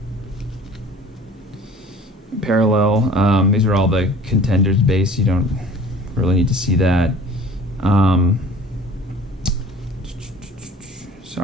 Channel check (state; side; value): normal; both; correlation 0.46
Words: parallel. These are all the Contenders base. You don't really need to see that.